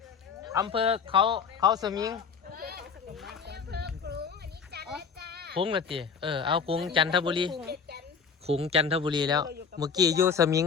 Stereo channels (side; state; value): right; quieter; 6.1 dB